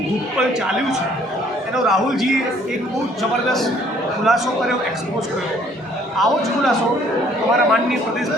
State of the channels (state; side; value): normal; both; correlation 0.61